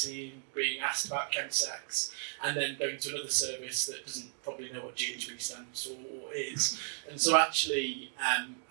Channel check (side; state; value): left; silent; 55 dB below the other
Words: being asked about chemsex, and then going to another service that doesn't probably know what GHB stands for or is. And so actually